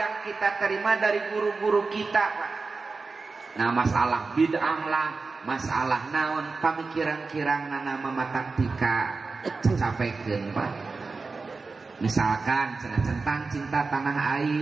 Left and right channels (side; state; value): left; quieter; 4.1 dB